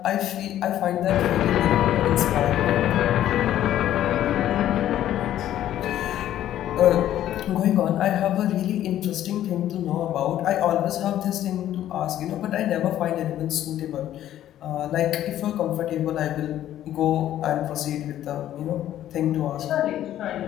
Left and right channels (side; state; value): right; quieter; 12.2 dB